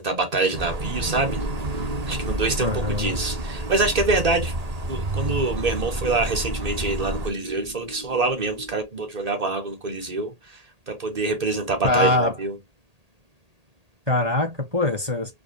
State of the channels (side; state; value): left; late; 1.8 ms